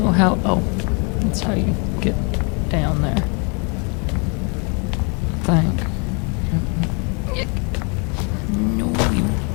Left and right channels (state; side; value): quieter; right; 35.3 dB